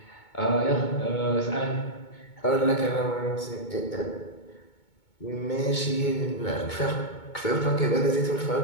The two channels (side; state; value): right; late; 2.2 ms